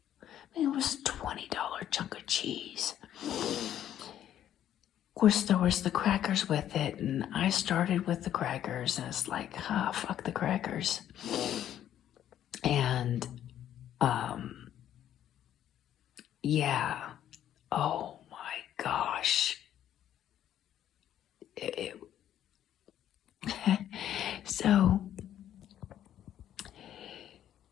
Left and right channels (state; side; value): quieter; right; 11.1 dB